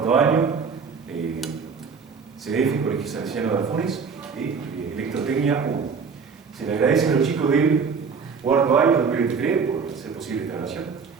año, CDF, Colegio Salesiano de Alfunes, Electrotecnia 1. Se le agradece a los chicos del cuarto año 2023 por hacer posible esta grabación.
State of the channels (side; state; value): left; quieter; 5.6 dB